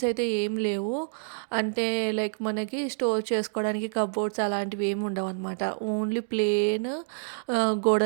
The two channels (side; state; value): left; silent; digital silence